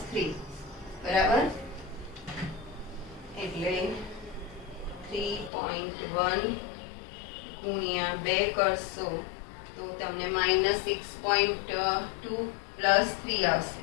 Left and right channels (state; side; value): drops out; right; at 5.5 s